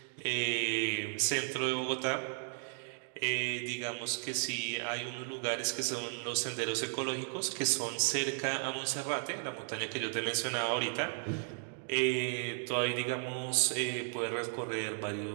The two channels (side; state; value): left; silent; 55 dB below the other